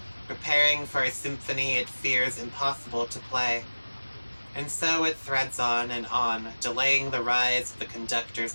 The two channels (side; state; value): both; inverted; correlation -1.00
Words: preparing for a symphony it fears impossible to play. And so it threads on and on, delaying the rise of the conductor's